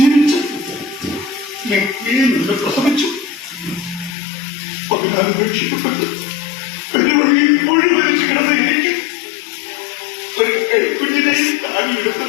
നിന്ന് പ്രസവിച്ചു. 14 ഉപേക്ഷിക്കപ്പെട്ട് പെരുവഴിയിൽ മുഴുവനിച്ച് കിടന്ന എനിക്ക് ഒരു കൈക്കുഞ്ഞിനെയും താങ്ങിയെടുത്ത്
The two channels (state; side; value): drops out; right; at 4.2 s